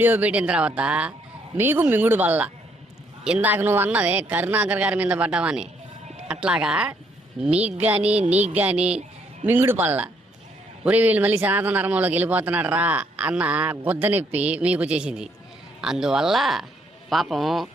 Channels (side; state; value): both; normal; correlation 0.70